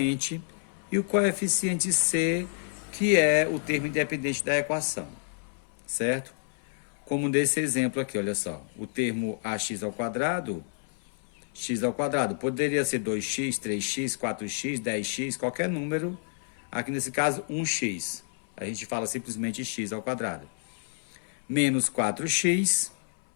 e o coeficiente C, que é o termo independente da equação, certo? Como nesse exemplo aqui, olha só, o termo ax ao quadrado, x ao quadrado, poderia ser 2x, 3x, 4x, 10x, qualquer número, aqui nesse caso 1x, a gente fala simplesmente x ao quadrado. Menos 4x,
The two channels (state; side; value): silent; right; 59 dB below the other